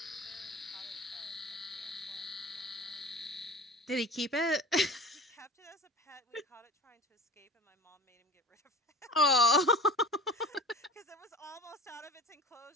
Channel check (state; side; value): normal; both; correlation 0.33